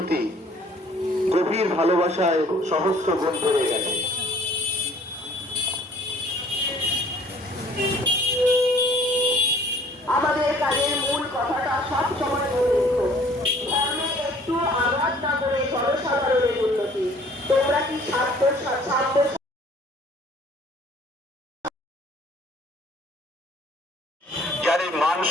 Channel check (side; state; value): both; normal; correlation 0.55